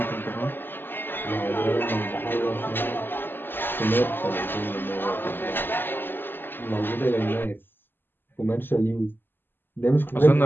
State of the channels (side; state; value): right; late; 0.097 ms